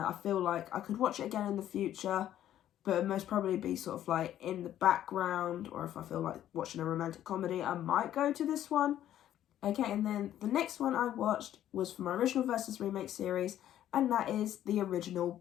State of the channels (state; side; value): quieter; right; 11.8 dB